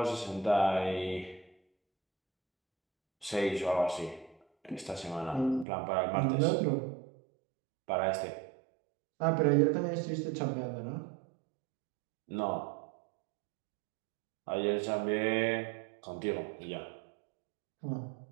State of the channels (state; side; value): drops out; left; at 5.7 s